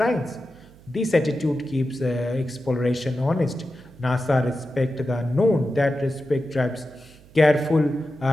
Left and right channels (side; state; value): right; noise; hum, 24 dB below the sound